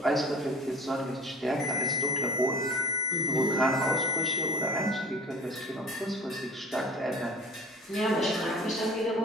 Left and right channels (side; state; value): both; normal; correlation 0.43